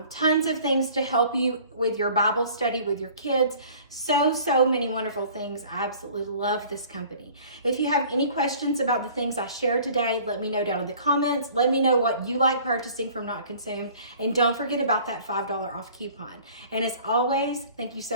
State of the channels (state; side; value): inverted; both; correlation -0.50